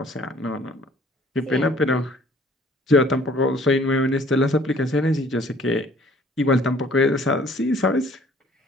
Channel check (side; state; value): both; normal; correlation 0.56